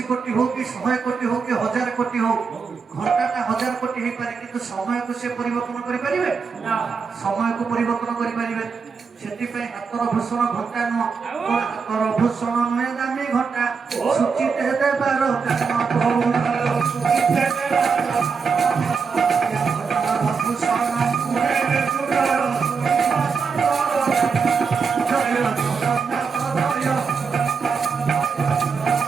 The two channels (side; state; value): left; quieter; 5.4 dB